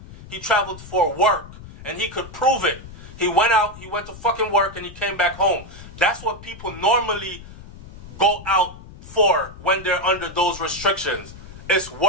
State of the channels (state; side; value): noise; left; rumble, 16 dB below the sound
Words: He traveled for work. And he could prove it. He went out, he went to fucking work, and he came back home. That's what people normally go out for when they're under those restrictions. It's